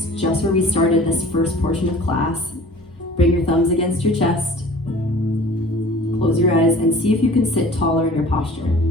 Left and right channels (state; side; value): normal; both; correlation 0.45